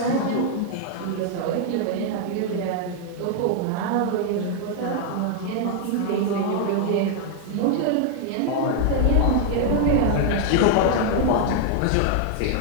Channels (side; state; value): both; different; correlation 0.00